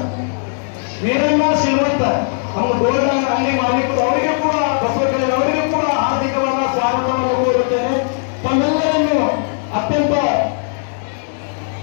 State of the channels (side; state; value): right; silent; digital silence